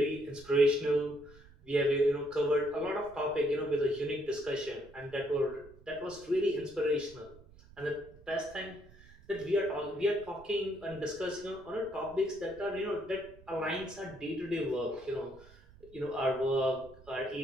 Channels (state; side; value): noise; right; rumble, 23 dB below the sound